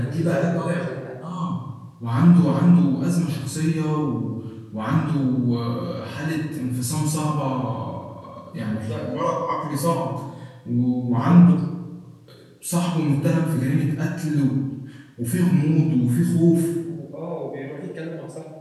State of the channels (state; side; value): identical; both; correlation 1.00